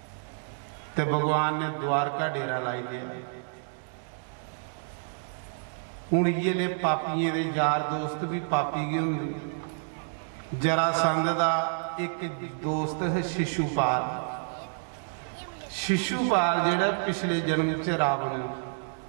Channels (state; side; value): silent; left; digital silence